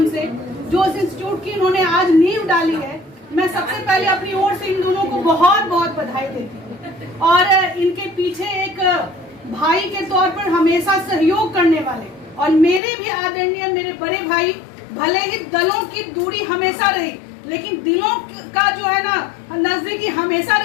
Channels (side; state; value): right; drops out; at 12.8 s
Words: से जो इस इंस्टीट्यूट की उन्होंने आज नींव डाली है, मैं सबसे पहले अपनी ओर से इन दोनों को बहुत बहुत बधाई देती हूँ। और इनके पीछे एक भाई के तौर पर हमेशा सहयोग करने वाले और मेरे भी आदरणीय मेरे बड़े भाई, भले ही दलों की दूरी हमेशा रही लेकिन दिलों का जो है ना नजदीकी हमेशा